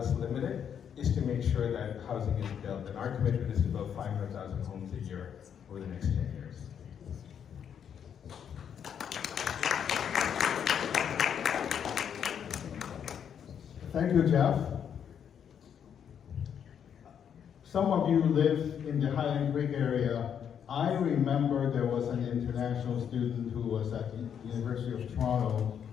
limited, is to make sure that housing is built, and our commitment is to build 500,000 homes a year over the next 10 years. Thank you, Jeff. Some of you live in the Highland Creek area. I remember there was an international student who was at the University of Toronto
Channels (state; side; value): quieter; right; 8.3 dB